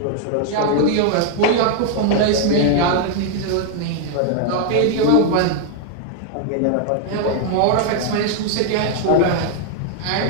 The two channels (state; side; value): different; both; correlation 0.00